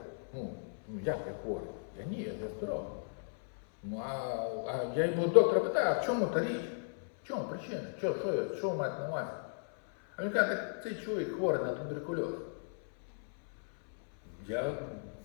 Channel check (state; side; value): silent; right; 54 dB below the other